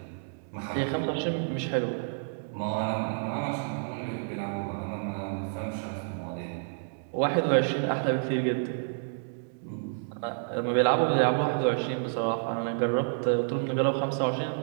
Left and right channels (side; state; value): left; silent; 58 dB below the other